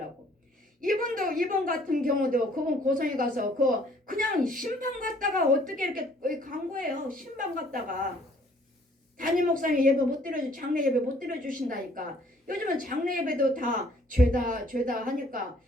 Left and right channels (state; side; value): normal; both; correlation 0.60